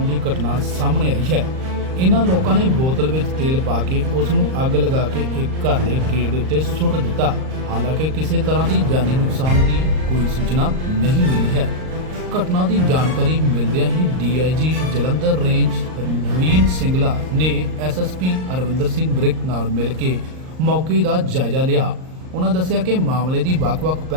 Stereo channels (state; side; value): late; left; 38 ms